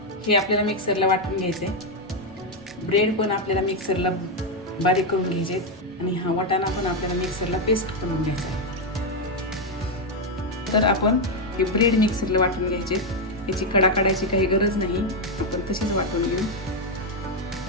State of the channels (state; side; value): normal; both; correlation 0.03